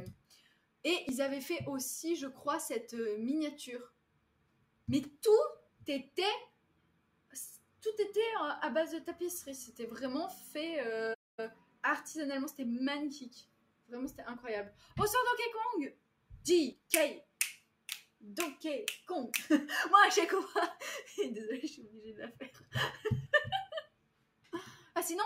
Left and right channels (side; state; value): both; identical; correlation 1.00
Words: Et ils avaient fait aussi, je crois, cette miniature. Mais tout était à base de tapisserie. C'était vraiment fait artisanalement. C'était magnifique. Vraiment, c'était incroyable. Bonsoir Donkey Kong. J.K. Donkey Kong. Moi, à chaque fois... Désolée, je suis obligée de la faire. Ah, sinon,